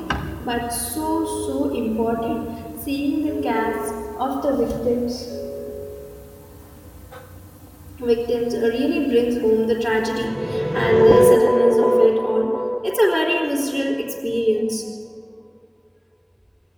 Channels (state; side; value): identical; both; correlation 1.00